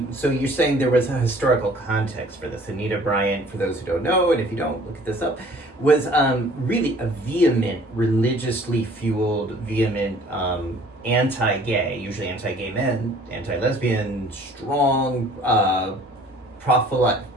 so you're saying there was a historical context for this. Anita Bryant, for those who don't know, and if you don't, look this up, was really a vehement, religiously fueled, anti-gay, usually anti-gay men, anti-lesbian, strong,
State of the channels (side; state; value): both; normal; correlation 0.53